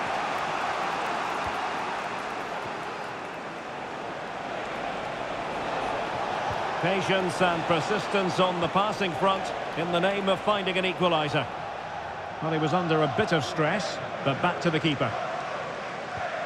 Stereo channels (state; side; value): identical; both; correlation 1.00